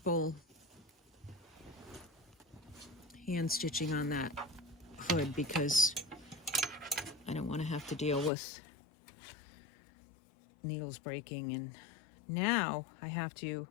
hand stitching on that hood because I don't want to have to deal with needles breaking. And now I have to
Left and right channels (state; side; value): drops out; right; at 8.3 s